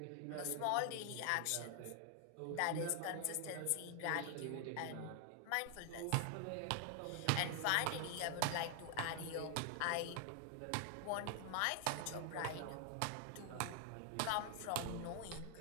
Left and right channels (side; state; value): both; different; correlation 0.00